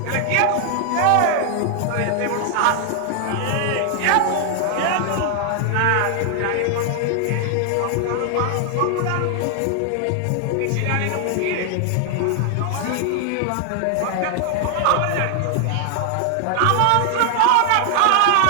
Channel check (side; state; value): both; different; correlation 0.00